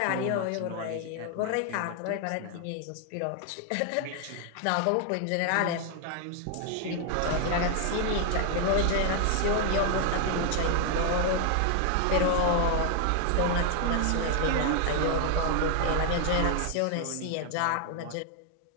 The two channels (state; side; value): different; both; correlation 0.00